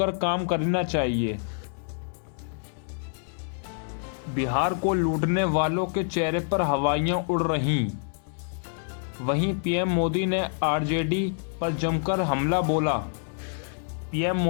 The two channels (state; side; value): silent; right; 60 dB below the other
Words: काम करना चाहिए। बिहार को लूटने वालों के चेहरे पर हवाइयां उड़ रहीं। वहीं पीएम मोदी ने आरजेडी पर जमकर हमला बोला। पीएम